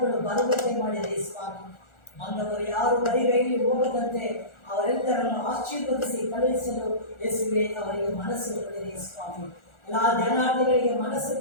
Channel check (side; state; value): right; late; 1.4 ms